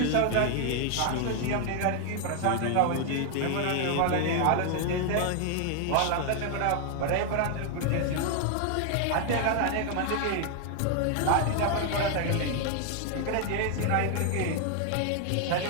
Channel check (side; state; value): both; different; correlation 0.00